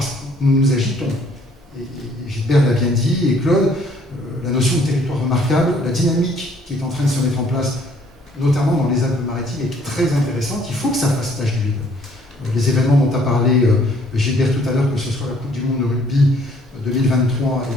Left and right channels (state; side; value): normal; both; correlation 0.62